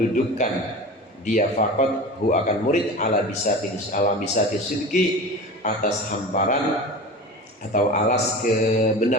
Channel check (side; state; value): both; normal; correlation 0.32